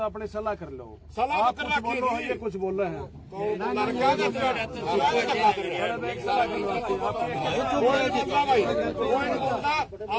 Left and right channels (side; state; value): both; identical; correlation 1.00